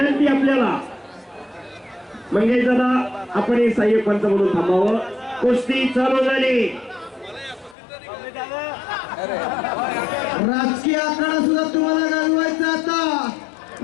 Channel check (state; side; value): drops out; right; at 7.8 s